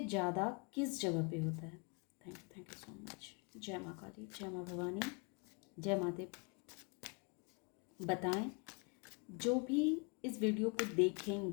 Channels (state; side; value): quieter; right; 32.5 dB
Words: ज़्यादा किस जगह पे होता है। Thank you so much. जय माँ काली, जय माँ भवानी, जय महादेव। बताएं, जो भी इस वीडियो को